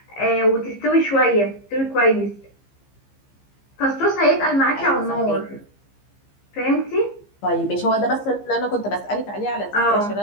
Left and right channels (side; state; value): right; late; 15 ms